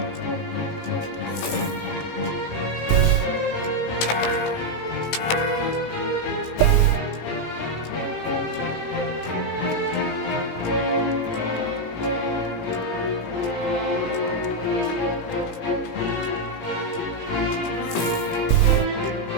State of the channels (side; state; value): right; late; 17 ms